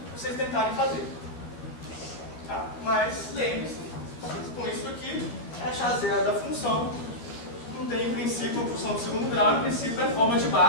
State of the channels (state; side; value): late; right; 13 ms